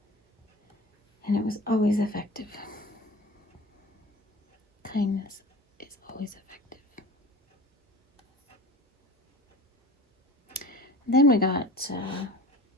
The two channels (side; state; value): both; normal; correlation 0.38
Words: And it was always effective. Kindness is always effective. Then we got